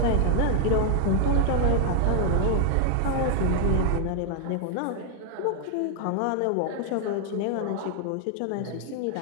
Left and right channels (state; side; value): different; both; correlation 0.00